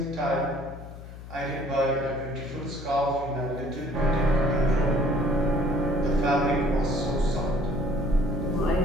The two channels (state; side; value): noise; left; hum, 14 dB below the sound